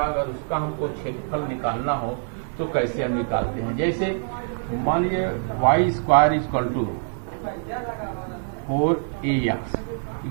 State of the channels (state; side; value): silent; left; digital silence